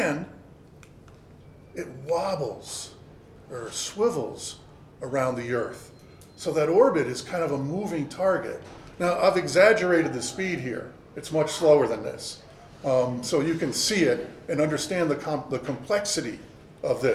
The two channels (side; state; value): both; identical; correlation 1.00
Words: it wobbles or swivels around the Earth. So that orbit is kind of a moving target. Now, I've exaggerated the speed here. It's much slower than this. So you can see it and understand the complexity of